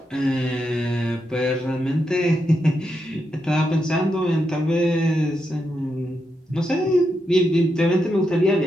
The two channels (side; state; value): both; normal; correlation 0.84